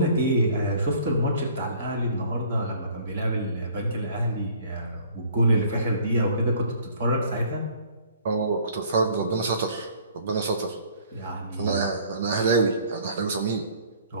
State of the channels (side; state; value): both; inverted; correlation -0.55